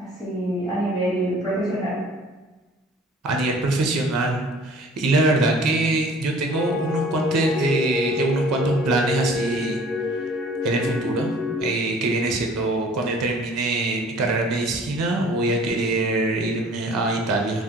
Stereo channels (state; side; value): normal; both; correlation 0.51